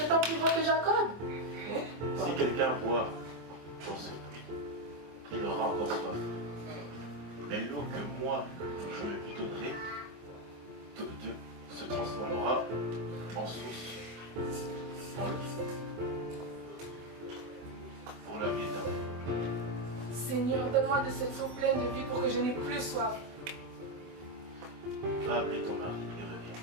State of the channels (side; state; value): left; late; 24 ms